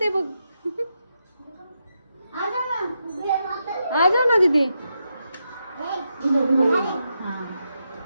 बघ. आ जा ना दीदी.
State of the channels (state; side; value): inverted; both; correlation -0.84